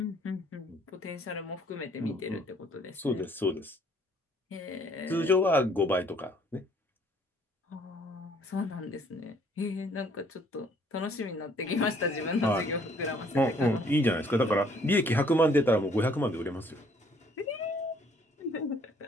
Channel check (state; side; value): normal; both; correlation 0.61